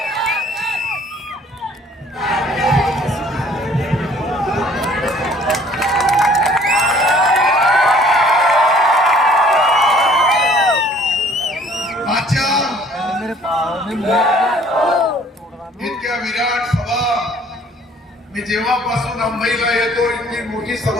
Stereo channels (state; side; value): normal; both; correlation 0.56